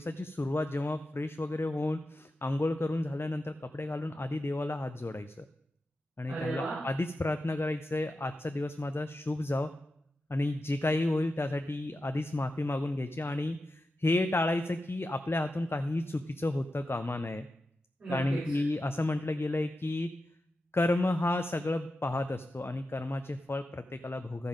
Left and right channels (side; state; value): both; normal; correlation 0.90